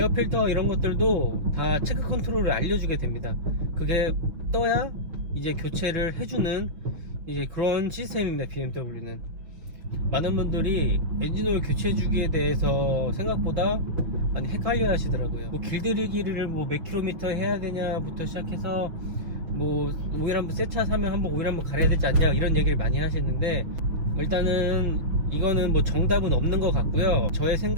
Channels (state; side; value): late; left; 6.1 ms